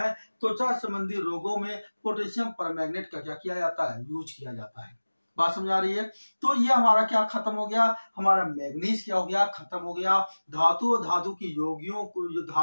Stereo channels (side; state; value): both; inverted; correlation -1.00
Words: त्वचा संबंधी रोगों में पोटेशियम परमैंगनेट का क्या किया जाता है, यूज किया जाता है। बात समझ आ रही है। तो ये हमारा क्या खत्म हो गया, हमारा मैग्नीज क्या हो गया, खत्म हो गया। धातु और धातु की योगियों को, जो